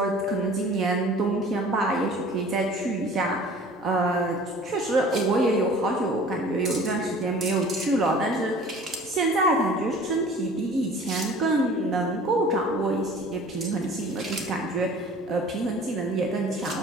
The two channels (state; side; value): normal; both; correlation 0.46